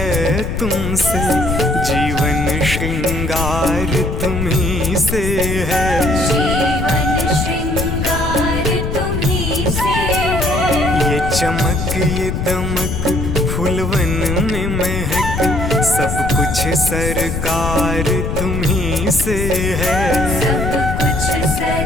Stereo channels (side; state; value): left; noise; rumble, 3 dB below the sound